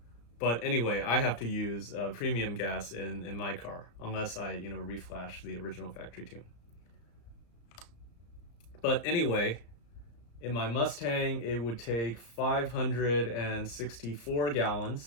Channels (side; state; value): right; late; 34 ms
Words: But anyway, I have to use premium gas in my car unless I, reflash the original factory tune. But anyway, in my Mustang, it would take 564